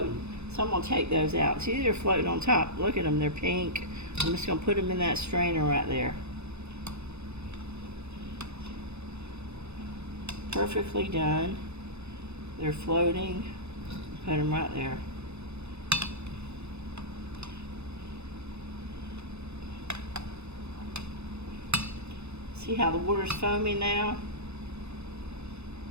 So I'm gonna take those out. See, they're floating on top. Look at them, they're pink. I'm just gonna put them in that strainer right there. Perfectly done. They're floating. Put them right there. See how the water's foaming now?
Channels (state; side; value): late; left; 0.80 ms